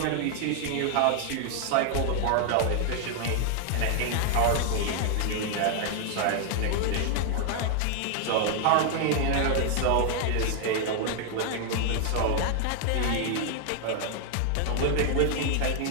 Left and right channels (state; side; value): different; both; correlation 0.00